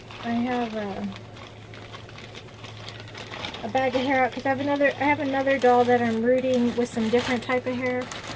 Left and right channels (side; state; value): both; identical; correlation 1.00